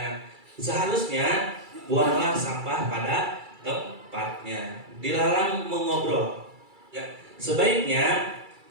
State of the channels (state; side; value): late; left; 2.3 ms